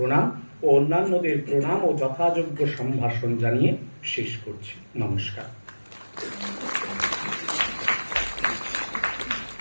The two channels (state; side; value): inverted; both; correlation -1.00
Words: ও অন্যান্যদের প্রণাম ও যথাযোগ্য সম্ভাষণ জানিয়ে শেষ করছি। নমস্কার।